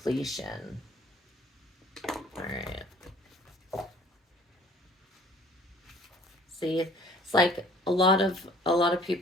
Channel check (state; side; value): normal; both; correlation 0.53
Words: All right. See, it's like a lot of